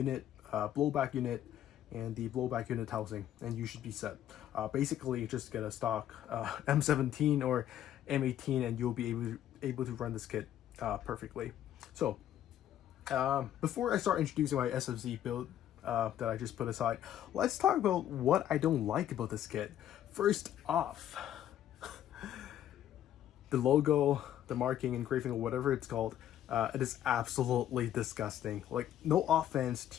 blowback unit, and the blowback unit housing, and you should be set. Basically, just get a stock M17 or M18 and you'll be able to run this kit perfectly. So before I start introducing my SMC build that I just put aside, let's talk about what I don't like about this kit. First off, the logo, the marking, engraving, or whatever it's called, it is absolutely disgusting. Like, no offense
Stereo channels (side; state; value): right; quieter; 11.4 dB